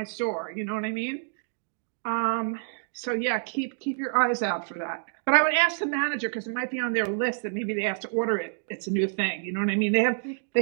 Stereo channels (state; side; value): silent; left; digital silence